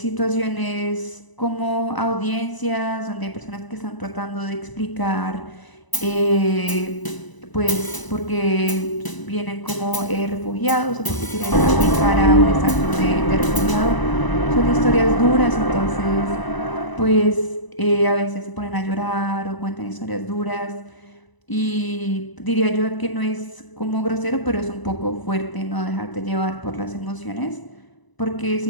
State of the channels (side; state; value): right; late; 1.0 ms